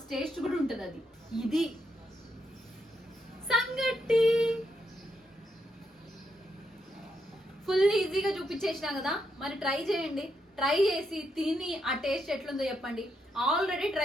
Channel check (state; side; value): normal; both; correlation 0.80